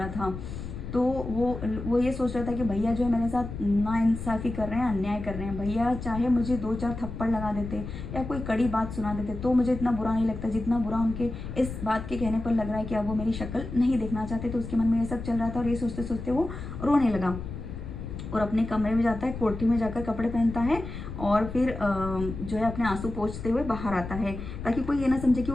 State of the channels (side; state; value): left; noise; rumble, 8 dB below the sound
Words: था। तो वो ये सोच रहा था कि भैया जो है मेरे साथ नाइंसाफ़ी कर रहे हैं, अन्याय कर रहे हैं। भैया चाहे मुझे 2-4 थप्पड़ लगा देते या कोई कड़ी बात सुना देते तो मुझे इतना बुरा नहीं लगता जितना बुरा उनके इस बात के कहने पर लग रहा है कि अब वो मेरी शक्ल नहीं देखना चाहते। तो उसके मन में ये सब चल रहा था और ये सोचते सोचते वो रोने लगा और अपने कमरे में जाता है, कोठरी में जाकर कपड़े पहनता है और फिर जो है अपने आंसू पोंछते हुए बाहर आता है ताकि कोई ये ना समझे कि